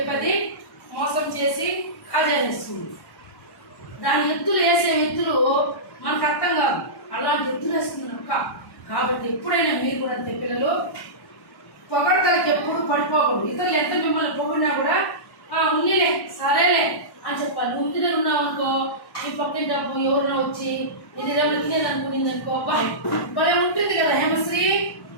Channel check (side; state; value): right; late; 1.1 ms